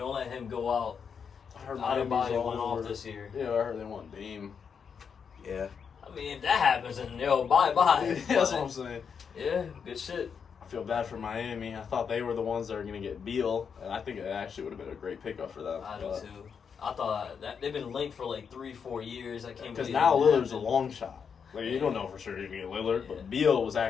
let him go out. I heard Miami's Adebayo all went off over. this year. Yeah, I heard they want Dame. Yeah. I mean, if that happens, then yo, bye. That's what I'm saying. Yeah, good shit. I feel bad for Miami. I thought they were the ones that were going to get Beal, and I think it actually would have been a great pickup for them. I do too. I thought that they've been linked for like 3-4 years. I can't Because believe now it Lillard's a happened. long shot. Like, you don't know for sure you're going to get Lillard, Yeah. but Beal was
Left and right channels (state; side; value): quieter; right; 6.6 dB